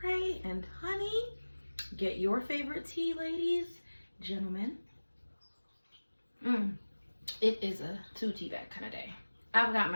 and honey. Get your favorite tea, ladies, gentlemen. It is a two tea bag kind of day. I've got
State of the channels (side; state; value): both; inverted; correlation -1.00